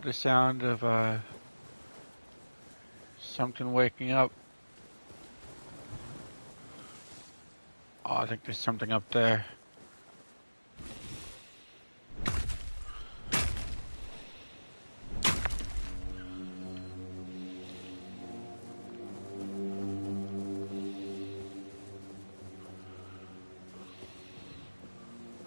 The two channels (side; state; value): both; inverted; correlation -1.00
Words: the sound of something waking up. Oh, I think there's something up there.